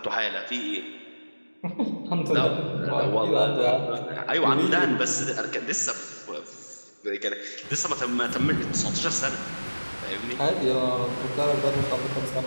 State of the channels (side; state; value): both; inverted; correlation -1.00